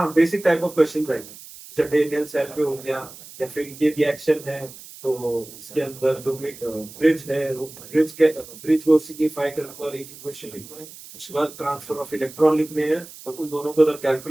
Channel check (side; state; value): right; noise; hiss, 17 dB below the sound